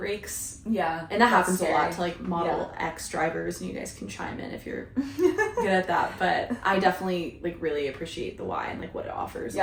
Yeah. And that happens scary. a lot to like Model X drivers, and you guys can chime in if you're good at that. But I definitely like really appreciate the Y and like what it offers a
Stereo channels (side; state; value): both; identical; correlation 1.00